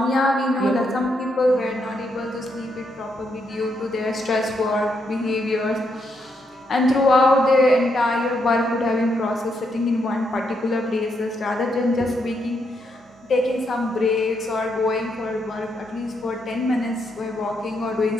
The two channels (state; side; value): normal; both; correlation 0.78